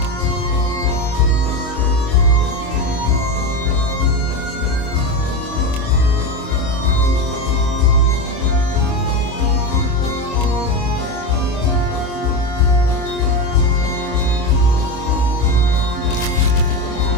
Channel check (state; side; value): late; right; 25 ms